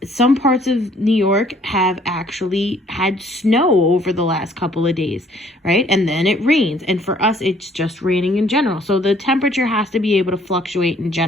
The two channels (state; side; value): normal; both; correlation 0.61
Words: Some parts of New York have actually had snow over the last couple of days, right? And then it rains. And for us, it's just raining in general. So the temperature has to be able to fluctuate in